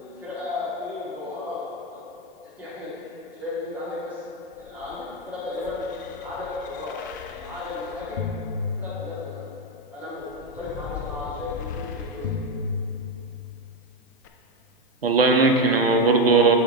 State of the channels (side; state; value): both; normal; correlation 0.09